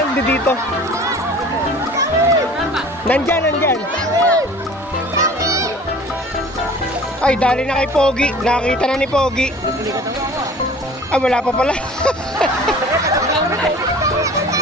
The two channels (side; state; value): both; normal; correlation 0.45